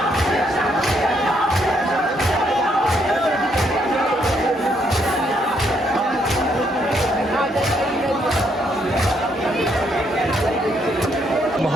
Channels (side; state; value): both; normal; correlation 0.73